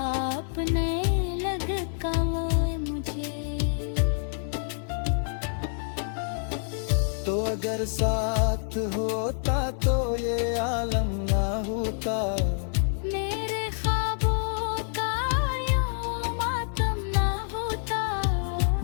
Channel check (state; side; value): silent; right; 57 dB below the other